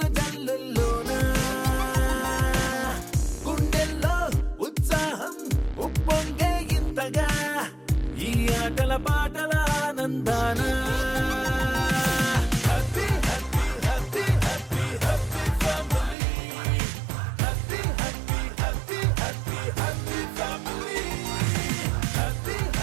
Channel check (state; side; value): drops out; left; at 16.2 s